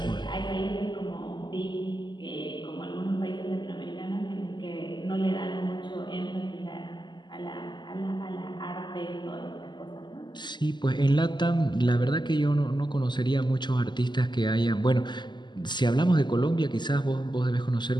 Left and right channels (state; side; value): late; right; 0.21 ms